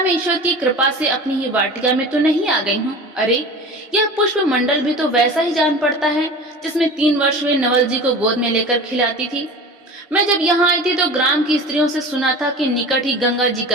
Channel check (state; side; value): normal; both; correlation 0.35